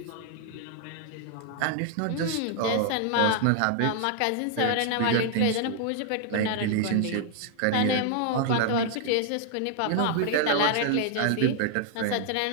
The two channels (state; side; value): different; both; correlation 0.00